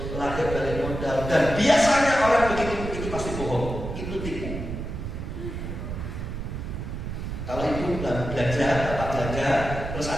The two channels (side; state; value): right; noise; rumble, 6 dB below the sound